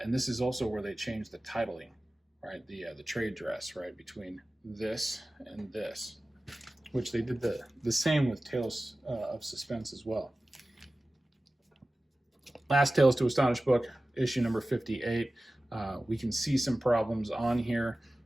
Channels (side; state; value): both; normal; correlation 0.96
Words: this is also where they changed the titling, right? The trade dress, right, between this and this, which they did the same with Tales of Suspense as well. Last Tales to Astonish book, issue number 58. We can see some problems on here,